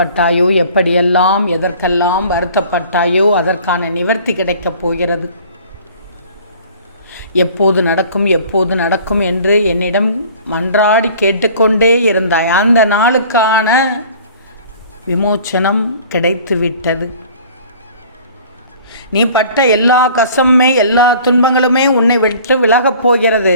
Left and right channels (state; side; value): inverted; both; correlation -0.49